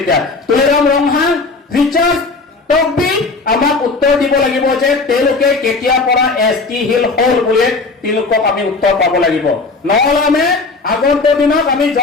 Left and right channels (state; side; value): quieter; right; 3.8 dB